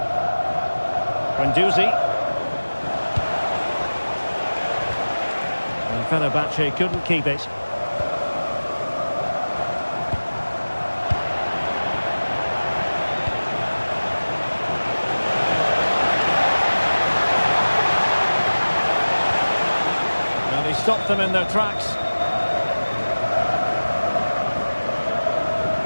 Guendouzi. And Fenerbahce couldn't keep it. And he stopped them in their tracks.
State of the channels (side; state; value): both; inverted; correlation -1.00